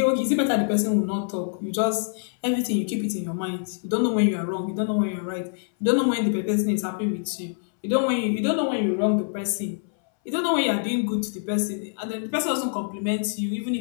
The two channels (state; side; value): silent; right; 62 dB below the other